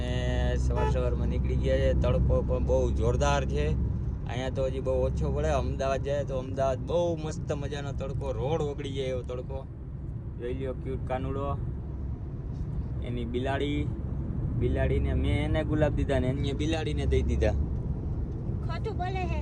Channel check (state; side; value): identical; both; correlation 1.00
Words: સવારમાં નીકળી ગયા છે. તડકો પણ બહુ જોરદાર છે. અહીંયા તો હજી બહુ ઓછો પડે. અમદાવાદ જાય તો અમદાવાદ બહુ મસ્ત મજાનો તડકો, રોડ ઓગળી જાય એવો તડકો. જોઈ લ્યો ક્યુટ કાનુડો, એની બિલાડીને મેં એને ગુલાબ દીધા ને એને બિલાડીને દઈ દીધા. ખોટું બોલે હે